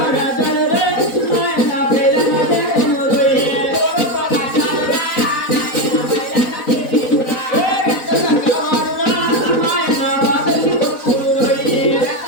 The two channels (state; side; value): late; right; 3.9 ms